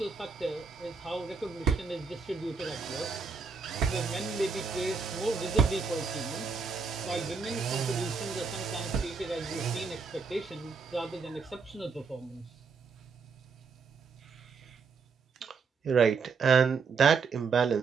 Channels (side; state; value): left; quieter; 5.1 dB